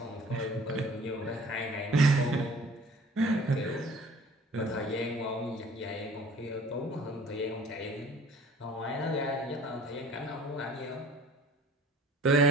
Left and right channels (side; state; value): both; normal; correlation 0.49